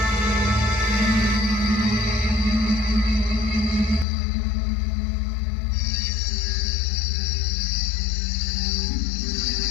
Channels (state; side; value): drops out; right; at 4.0 s